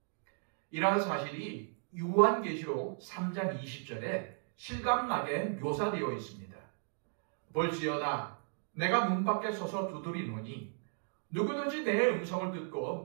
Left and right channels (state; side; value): silent; left; 54 dB below the other